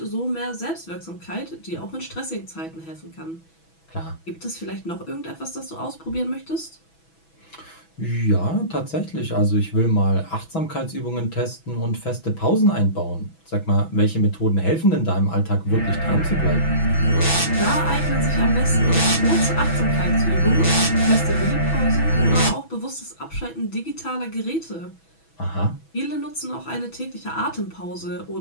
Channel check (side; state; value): right; late; 6.1 ms